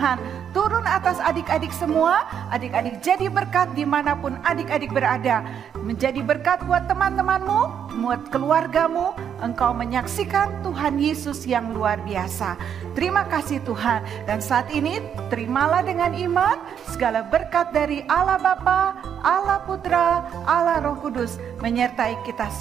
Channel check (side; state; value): left; quieter; 8.4 dB